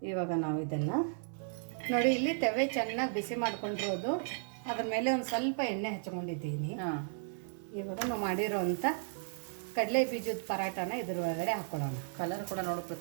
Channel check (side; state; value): left; silent; 55 dB below the other